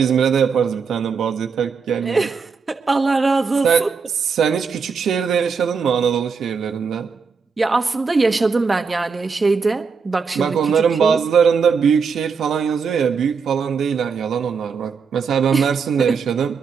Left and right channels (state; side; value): quieter; left; 5.5 dB